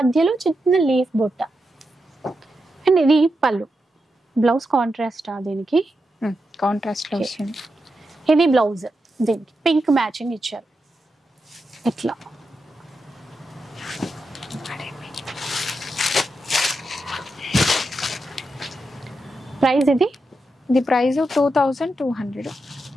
చిన్న లీఫ్ బుట్ట. అండ్ ఇది పళ్ళు. బ్లౌజ్ కాంట్రాస్ట్ దీనికి కాంట్రాస్ట్ లో వస్తుంది. ఇది బ్లౌజ్, దీనికి పింక్ మ్యాచింగ్ ఇచ్చారు. ఇట్లా ప్రైస్ ఇది ప్రైస్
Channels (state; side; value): normal; both; correlation 0.87